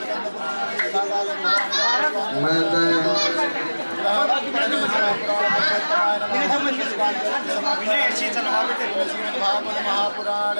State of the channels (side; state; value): both; inverted; correlation -1.00